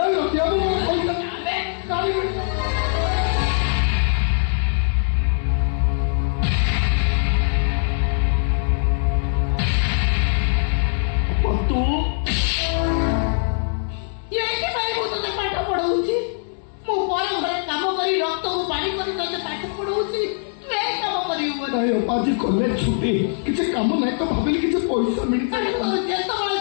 ରଖିବା ମୋ ପଇସା अबे କାଢି ତୁ तोते पाठ पढ़ाऊँ मु पर घरे काम करी रक्त को पानी करी तोते पाठ पढ़ाऊँ तू ए काम करियो ନାଇଁ ଆଜି କଲେଜ ଛୁଟି କିଛି କାମ ନାହିଁ ତ ଭାବିଲି କିଛି ପଇସା ମିଳିଥାଏ ଯେତେବେଳେ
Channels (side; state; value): right; silent; digital silence